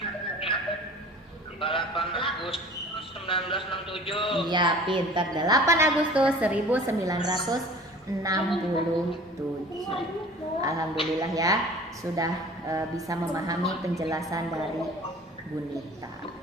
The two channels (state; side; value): normal; both; correlation 0.44